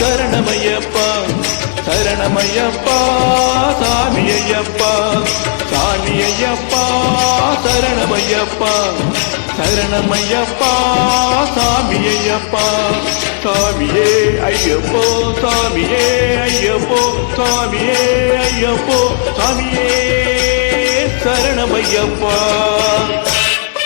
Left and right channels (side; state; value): right; silent; digital silence